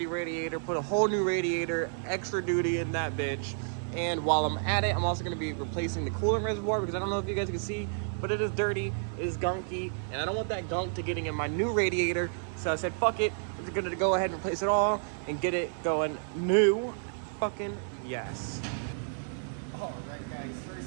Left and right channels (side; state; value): left; silent; digital silence